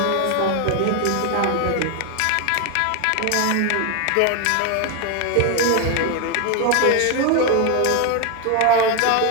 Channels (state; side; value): different; both; correlation 0.01